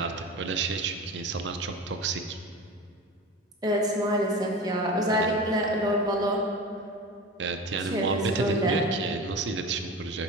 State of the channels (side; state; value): both; normal; correlation 0.31